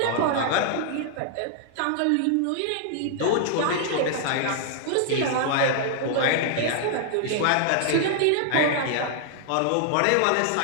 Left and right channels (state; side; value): different; both; correlation -0.01